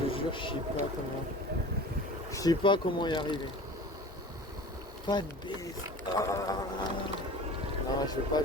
jure, je sais pas comment y arriver. Pas de baisse. Non, je veux pas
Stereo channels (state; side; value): normal; both; correlation 0.39